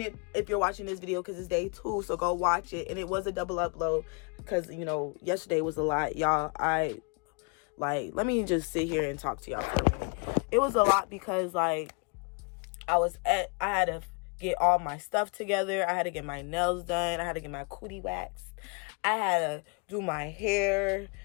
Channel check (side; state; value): right; quieter; 35.7 dB